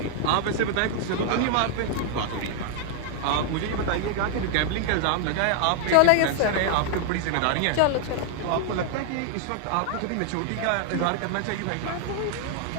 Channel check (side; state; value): both; different; correlation 0.00